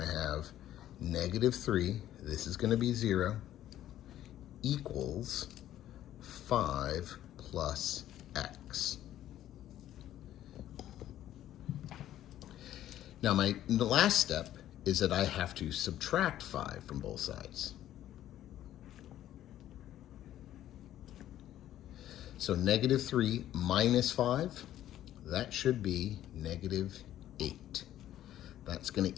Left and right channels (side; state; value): right; quieter; 12.5 dB